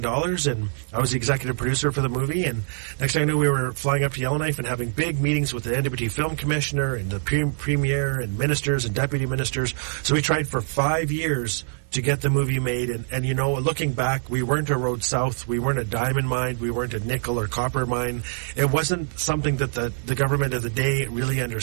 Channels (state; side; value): silent; left; 62 dB below the other